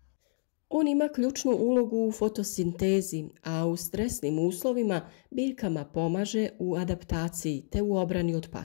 On ima ključnu ulogu u fotosintezi, a u stresnim uslovima biljkama pomaže u adaptaciji te u obrani od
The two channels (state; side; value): silent; right; 58 dB below the other